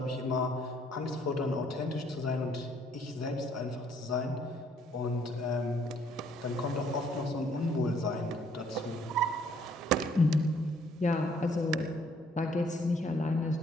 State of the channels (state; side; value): normal; both; correlation 0.64